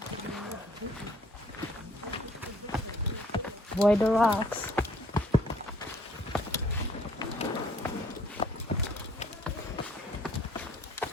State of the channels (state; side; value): normal; both; correlation 0.60